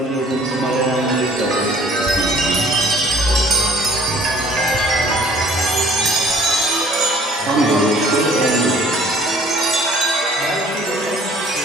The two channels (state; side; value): normal; both; correlation 0.54